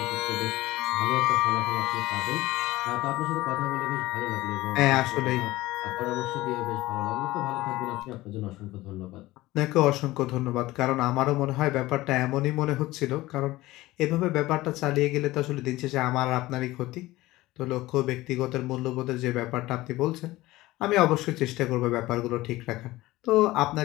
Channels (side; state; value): right; quieter; 18.2 dB